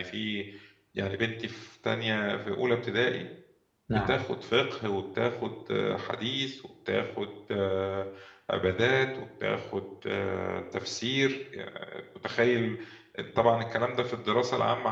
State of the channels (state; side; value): identical; both; correlation 1.00